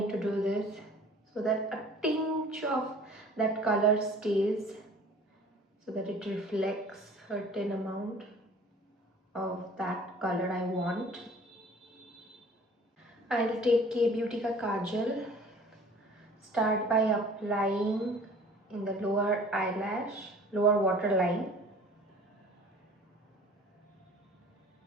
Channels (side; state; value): both; normal; correlation 0.48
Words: to do this so that a tinge of that color stays, so that it reflects a certain amount of that color I want. I'll take K Beauty ka kajal. Start by applying in the lower waterline.